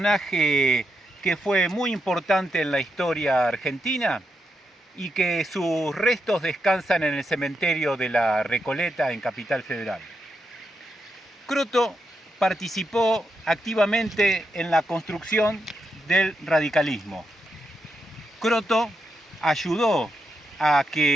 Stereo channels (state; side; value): normal; both; correlation 0.84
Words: que fue muy importante en la historia argentina y que sus restos descansan en el cementerio de la Recoleta en Capital Federal. Croto participó activamente en la construcción del radicalismo. Croto ayudó a